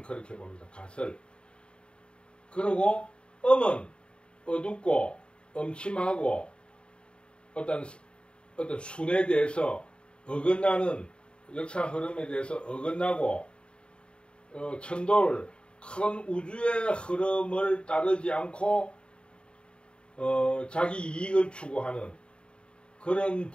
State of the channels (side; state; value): right; late; 0.054 ms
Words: 가설. 그리고 음은 어둡고 음침하고 어떤 순에 대해서 어긋나는 역사 흐름에 대해서 어긋나고 천도를 큰 우주의 흐름을 따르지 않고 자기 이익을 추구하는 그런